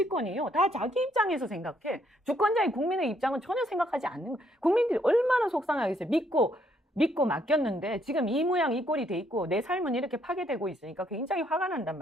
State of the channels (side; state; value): both; normal; correlation 0.70